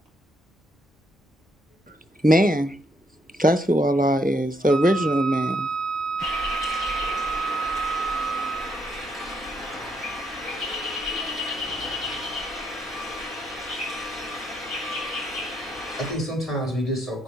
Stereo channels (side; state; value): both; normal; correlation 0.74